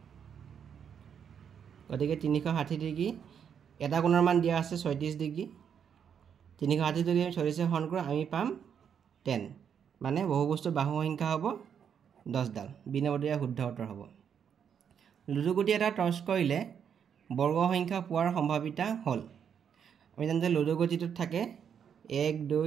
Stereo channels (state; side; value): quieter; left; 7.8 dB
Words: গতিকে 360 ডিগ্ৰী এটা কোণৰ মান দিয়া আছে 36 ডিগ্ৰী 360 যদি 36 হৰণ কৰোঁ আমি পাম 10 মানে বহুভুজটোৰ বাহুৰ সংখ্যা হ'ব 10 ডাল বি নম্বৰটো ইয়াৰ শুদ্ধ উত্তৰ হ'ব লুডুগুটি এটা টছ কৰিলে বৰ্গ সংখ্যা পোৱাৰ সম্ভাৱিতা হ'ল আমি জানো যে লুডুগুটিটোত থাকে 1 2